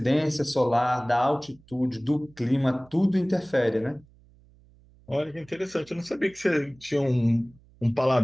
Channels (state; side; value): noise; right; hum, 28 dB below the sound